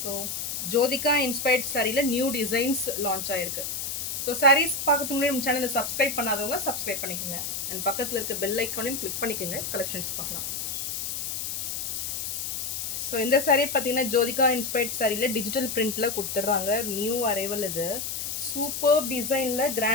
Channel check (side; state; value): left; noise; hiss, 4 dB below the sound